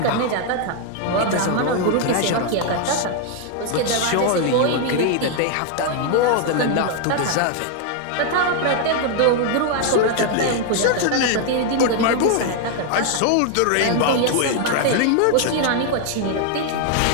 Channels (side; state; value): both; different; correlation 0.00